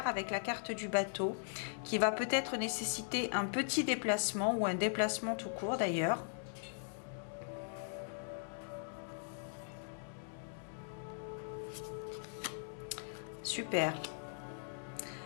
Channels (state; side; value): silent; right; digital silence